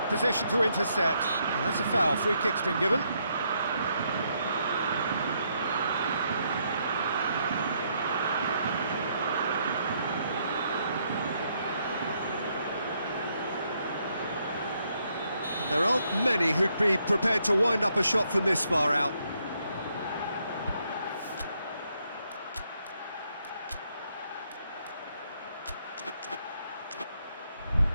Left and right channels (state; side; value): inverted; both; correlation -0.74